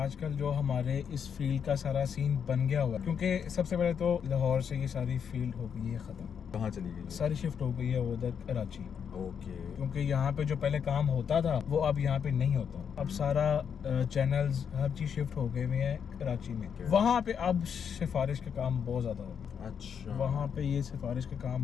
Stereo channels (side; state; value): right; quieter; 7.4 dB